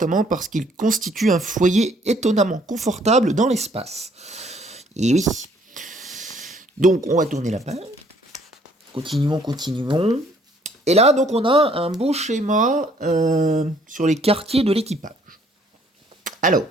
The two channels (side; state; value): both; normal; correlation 0.63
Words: parce qu'il constitue un foyer étonnamment confortable dans l'espace. Et oui. Donc, on va tourner la page. Continuons, continuons. Et là, donc, on a un beau schéma sur les quartiers de l'équipage. Alors,